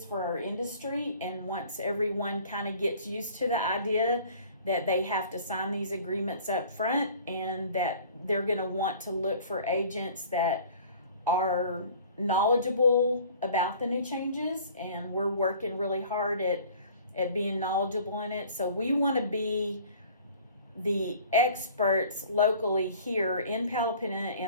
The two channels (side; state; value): both; inverted; correlation -0.49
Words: for our industry. And once everyone kind of gets used to the idea that they have to sign these agreements up front, and that they're going to want to look for agents that are knowledgeable about the new changes, and we're working really hard at being knowledgeable in it. So we want to be the experts locally here in Palapina